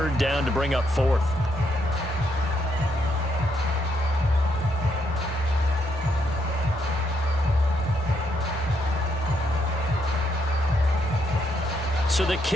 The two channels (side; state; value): both; normal; correlation 0.76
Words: down to bring up 4th. So the